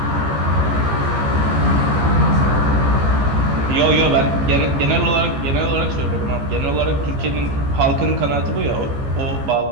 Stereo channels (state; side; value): late; left; 15 ms